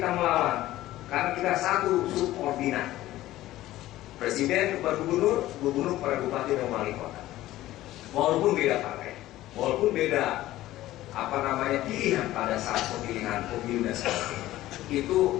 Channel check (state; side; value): quieter; right; 15.4 dB